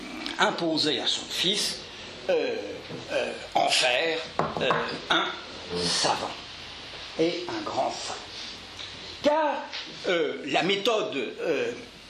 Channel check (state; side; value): identical; both; correlation 1.00